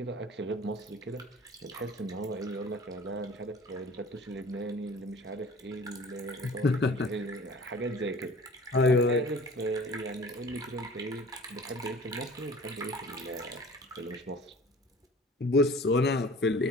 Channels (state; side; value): normal; both; correlation 0.45